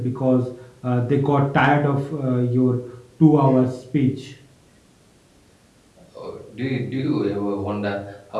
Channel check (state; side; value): identical; both; correlation 1.00